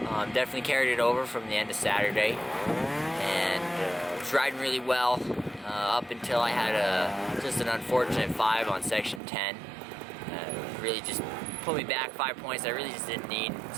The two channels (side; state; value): left; drops out; at 9.2 s